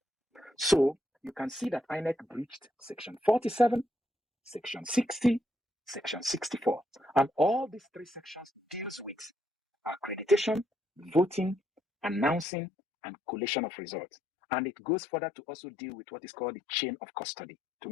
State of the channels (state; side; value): drops out; right; at 12.5 s